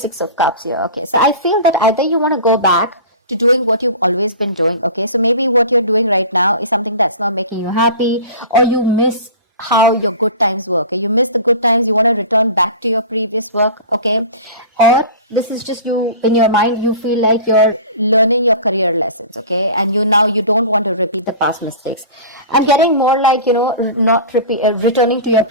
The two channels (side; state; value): both; inverted; correlation -0.37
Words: of Cups here. Okay, so I feel that either you want to go back to doing what you've always been doing. Okay, so maybe what you're doing right now is something that's not making you happy, or you miss how your good times were. Okay, you miss the good times, you want to return back to your previous work. Okay, or this is just you in your mind, you feel like you're learning your career lessons. Okay, and you don't want to repeat the past mistakes. I'm getting more like, not returning to your